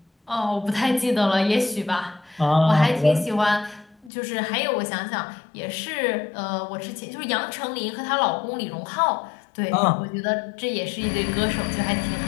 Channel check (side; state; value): right; drops out; at 4.1 s